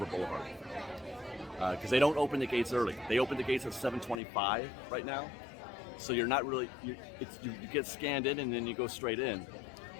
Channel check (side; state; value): right; drops out; at 4.2 s